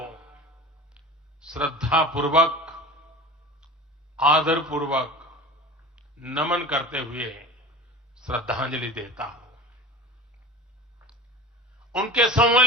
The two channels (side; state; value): both; normal; correlation 0.35